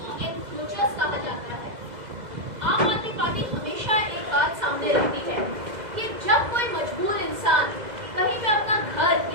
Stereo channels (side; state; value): left; late; 2.0 ms